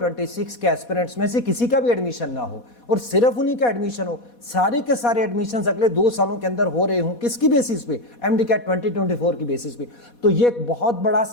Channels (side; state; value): right; late; 4.2 ms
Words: 26 کے ایسپیرنٹس میں سے کسی کا بھی ایڈمیشن نہ ہو اور صرف انہی کا ایڈمیشن ہو, سارے کے سارے ایڈمیشنز اگلے 2 سالوں کے اندر ہو رہے ہوں, کس کی بیسس پہ؟ ایم ڈی کیٹ 2024 کی بیسس پہ. تو یہ ایک بہت بڑا